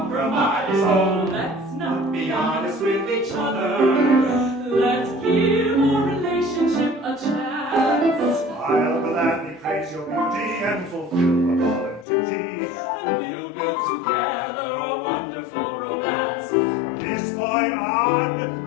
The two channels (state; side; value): drops out; right; at 12.1 s